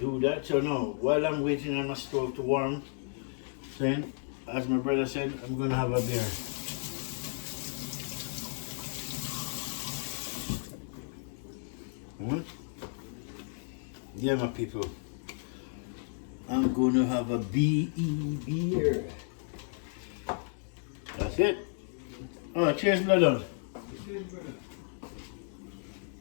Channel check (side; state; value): right; silent; 56 dB below the other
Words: that. So now, while I'm waiting on my stove to warm, then, as my brother said, I'm gonna have a beer. Yeah, my people. I'm gonna have a BE beer. That's it. Oh, cheers, brother. Cheers, brother.